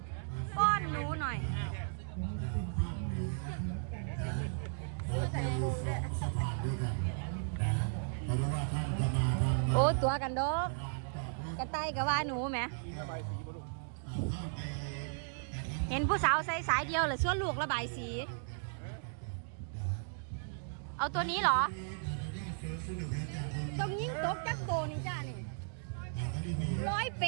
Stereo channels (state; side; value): silent; left; digital silence